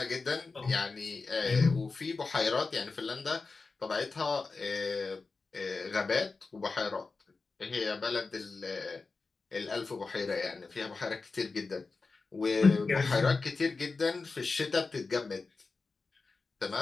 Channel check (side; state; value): right; quieter; 4.1 dB